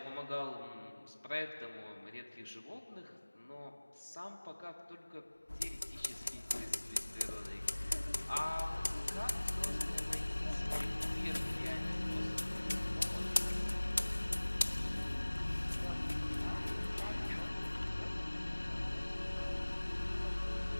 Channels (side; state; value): both; inverted; correlation -1.00